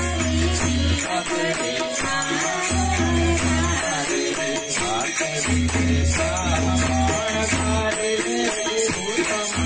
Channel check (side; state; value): both; identical; correlation 1.00